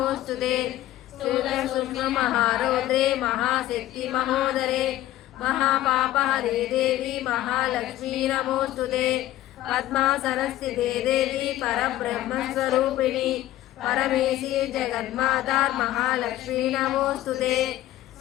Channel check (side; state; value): right; quieter; 14.7 dB